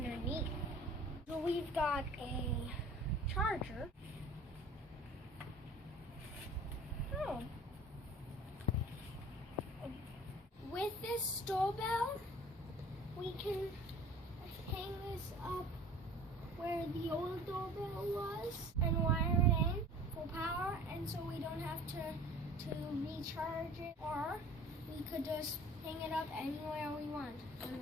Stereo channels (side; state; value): both; normal; correlation 0.45